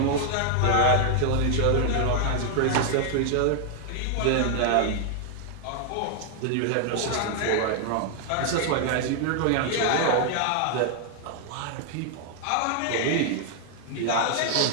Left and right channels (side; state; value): both; different; correlation 0.00